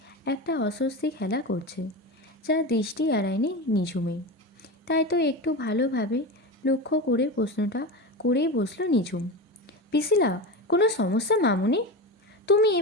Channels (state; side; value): normal; both; correlation 0.23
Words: একটা অস্বস্তি খেলা করছে, যা দৃষ্টি এড়ায়নি নিঝুমের। তাই তো একটু ভালোভাবে লক্ষ্য করে প্রশ্নটা করেই বসল নিঝুম, পিসিলা, কোনো সমস্যা মামুনি? তুমি